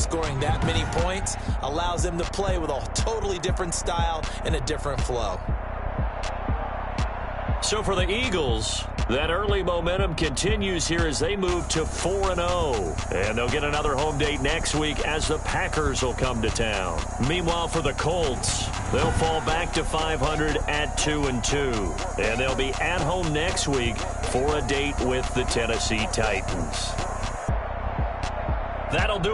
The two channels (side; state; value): both; identical; correlation 1.00